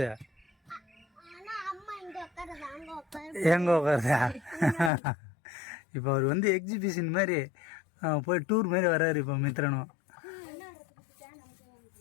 எங்கே உட்காருதா? இப்போ அவர் எக்ஸிபிஷன் மாதிரி போய் டூர் மாதிரி வர்றாரு இப்போ மித்ரனும்.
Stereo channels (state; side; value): drops out; right; at 4.9 s